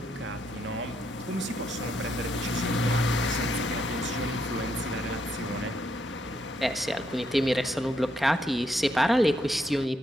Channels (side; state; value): both; normal; correlation 0.77